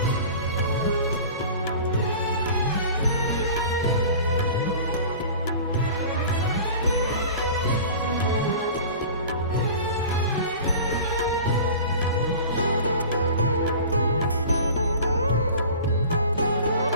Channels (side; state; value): both; inverted; correlation -0.39